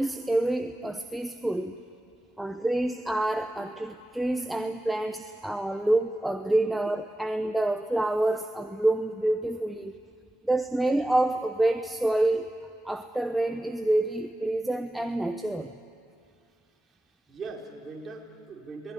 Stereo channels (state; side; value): normal; both; correlation 0.94